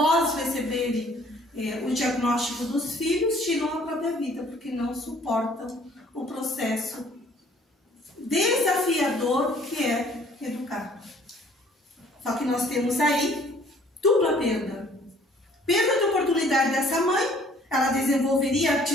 receberem o diagnóstico dos filhos, tiram a própria vida, porque não suportam o processo desafiador que é educar. Só que nós temos aí dupla perda. Perda de oportunidade dessa mãe, ela desenvolveria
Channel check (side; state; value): both; normal; correlation 0.57